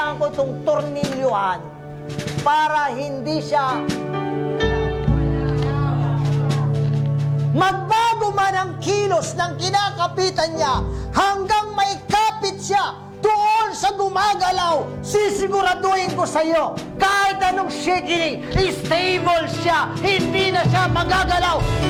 ko itong tornilyuhan para hindi siya magbago man ang kilos ng kinakapitan niya hanggang may kapit siya doon sa gumagalaw. Sisiguraduhin ko sa iyo, kahit anong shaking, stable siya, hindi na siya magagalaw.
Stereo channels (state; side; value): identical; both; correlation 1.00